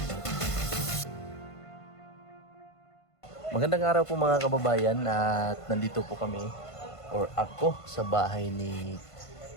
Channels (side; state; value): right; late; 1.5 ms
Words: Magandang araw po mga kababayan at nandito po kami or ako sa bahay ni